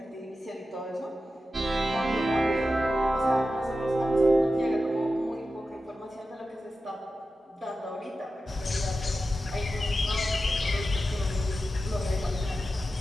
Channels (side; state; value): both; normal; correlation 0.92